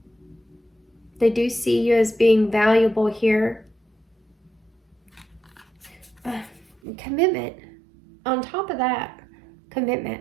They do see you as being valuable here. Commitment. On top of that, commitment.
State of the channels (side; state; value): left; drops out; at 6.8 s